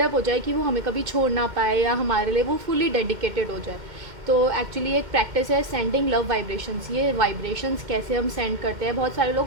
हो जाए कि वो हमें कभी छोड़ ना पाए या हमारे लिए वो फुली डेडिकेटेड हो जाए। तो एक्चुअली एक प्रैक्टिस है सेंडिंग लव वाइब्रेशंस। ये वाइब्रेशंस कैसे हम सेंड करते हैं, बहुत सारे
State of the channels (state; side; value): late; left; 2.1 ms